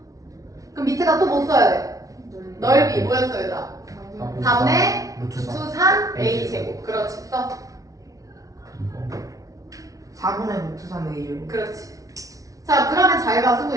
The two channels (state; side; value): late; left; 0.17 ms